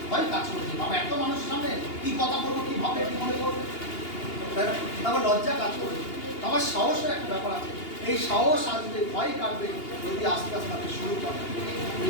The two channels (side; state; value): right; late; 2.8 ms